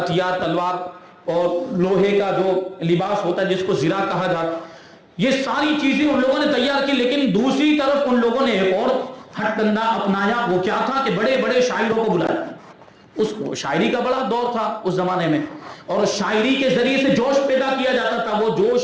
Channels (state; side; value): identical; both; correlation 1.00